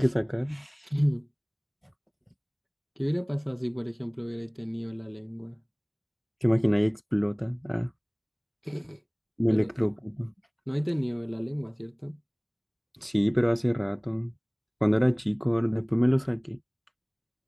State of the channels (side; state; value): both; identical; correlation 1.00